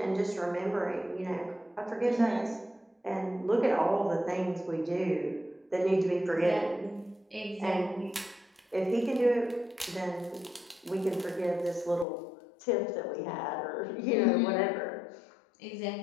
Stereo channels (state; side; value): drops out; right; at 12.1 s